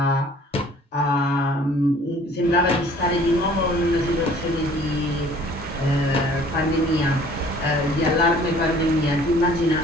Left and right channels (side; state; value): both; normal; correlation 0.54